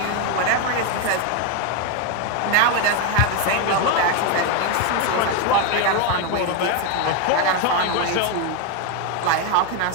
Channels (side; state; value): both; different; correlation 0.02